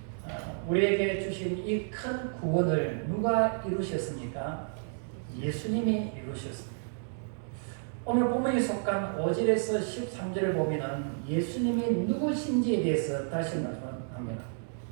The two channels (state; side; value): silent; left; digital silence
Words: 우리에게 주신 이 큰 구원을 누가 이루셨습니까? 예수님이 이루셨습니다. 오늘 본문에 속한 5절에서 13절을 보면 예수님이 누구신지에 대해서 다시 말씀합니다.